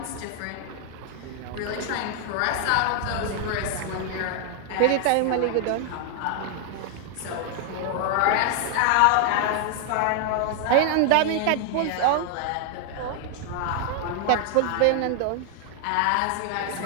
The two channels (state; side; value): different; both; correlation 0.00